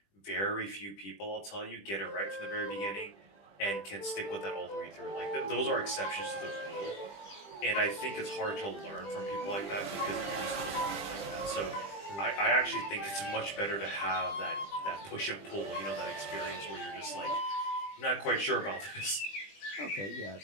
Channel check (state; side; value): late; right; 20 ms